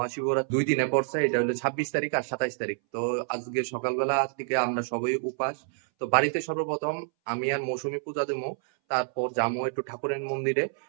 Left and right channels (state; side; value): silent; left; 59 dB below the other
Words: 2 দিনে পড়ছে, এটা হলো 26 তারিখ আর 27 তারিখ। তো আজকে সকালবেলা থেকে আমরা সবাই উপাস। তো বাড়িতে সর্বপ্রথম আমি আর মৌসুমী পূজা দেবো, তারপর যাবো একটু ঠাকুরের মন্দিরে।